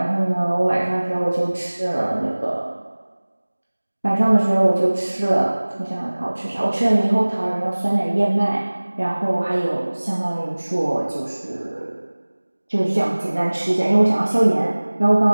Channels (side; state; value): both; inverted; correlation -1.00